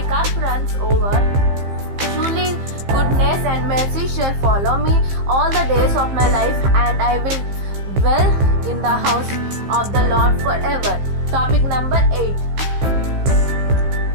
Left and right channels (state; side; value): late; left; 15 ms